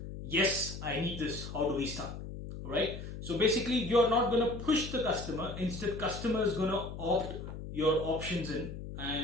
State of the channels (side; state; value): left; noise; hum, 9 dB below the sound